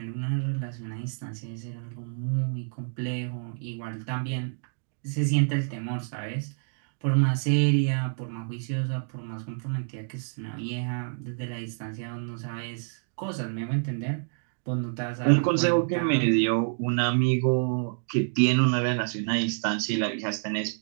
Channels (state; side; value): silent; left; digital silence